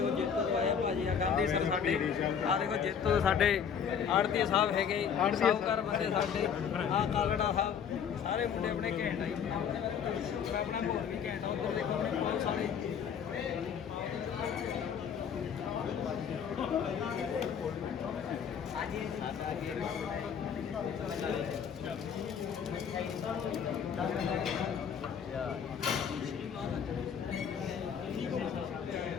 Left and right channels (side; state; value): right; quieter; 7.5 dB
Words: ਜੇਤੋ ਤੋਂ ਆਇਆ ਭਾਜੀ ਆ ਗਾਂਧੀ ਸਰ ਸਾਡੇ ਆ ਦੇਖੋ ਜੇਤੋ ਤੋਂ ਸਾਡੇ ਆੜਤੀ ਸਾਹਿਬ ਹੈਗੇ ਸਾਹੂਕਾਰ ਬੰਦੇ ਸਾਡੇ ਆ ਕਾਲੜਾ ਸਾਹਿਬ ਸਾਰੇ ਮੁੰਡੇ ਆਪਣੇ ਘੈਂਟ ਆ ਜੀ ਆਪਣਾ ਬਹੁਤ ਵੀ ਘੈਂਟ ਆ ਉੱਧਰ ਦੇਖੋ ਆਪਣੇ ਬਹੁਤ ਸਾਰੇ